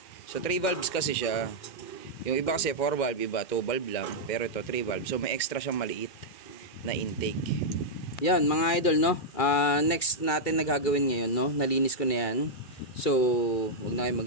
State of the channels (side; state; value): right; late; 2.4 ms